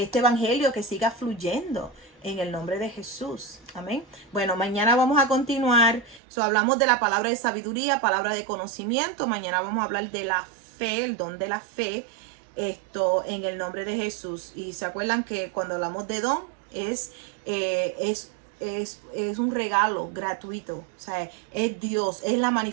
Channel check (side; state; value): left; drops out; at 6.2 s